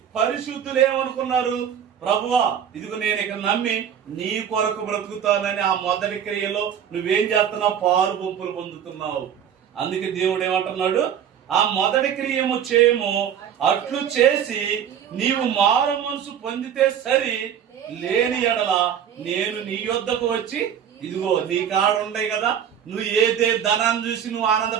పరిశుద్ధులు ఏమనుకున్నారు? ప్రభువా, ఇదిగో నేను ఇక్కడ నమ్మి నీ కొరకు బ్రతుకుతానని ఆ మొదటి క్రియలో నువ్వేం చేస్తున్నావు? పారు పంపులు పొందుతున్నావు. అందుకే దేవుడు ఏమంటున్నాడు? ఆ మొదటి క్రియము చేయము. అట్లు చేసి నీవు మారు మనసు పొందితే సరి, లేని ఎడల నేను నీ యొద్దకు వచ్చి, ఇదిగో నీ కాడ ఉన్నాయి కదా, నువ్వు ఏ ధనాన్ని చూసి నువ్వు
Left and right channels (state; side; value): quieter; left; 8.8 dB